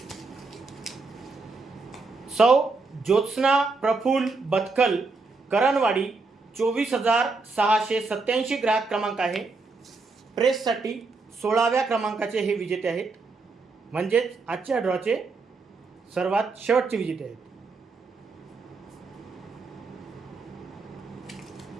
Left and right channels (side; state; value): left; quieter; 3.9 dB